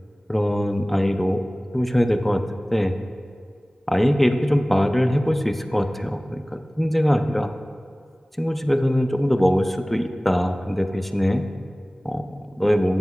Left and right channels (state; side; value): normal; both; correlation 0.98